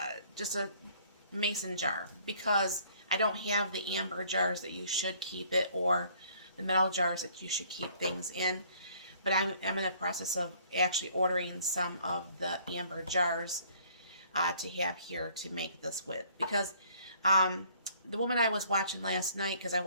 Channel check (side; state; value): both; inverted; correlation -0.59